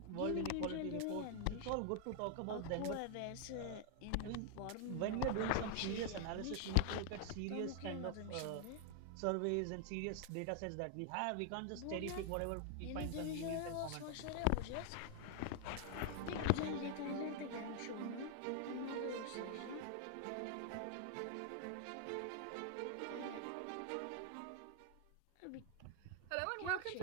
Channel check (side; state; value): both; different; correlation 0.00